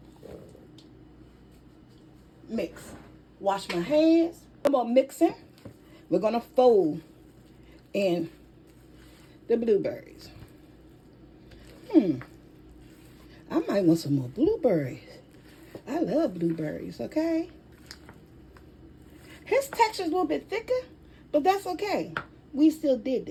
mix. Wash my hands. No more mixing. We're going to fold in the blueberries. I might want some more blueberries. I love blueberries, okay? His texture is a little bit thicker, but that's okay. We still did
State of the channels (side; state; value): both; identical; correlation 1.00